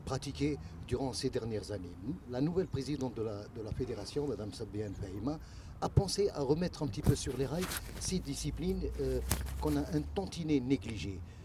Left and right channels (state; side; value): identical; both; correlation 1.00